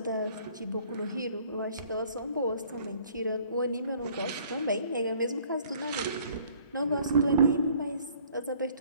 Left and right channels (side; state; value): both; inverted; correlation -0.58